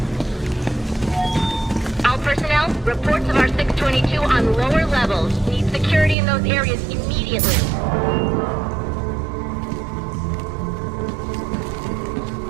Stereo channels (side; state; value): left; drops out; at 6.2 s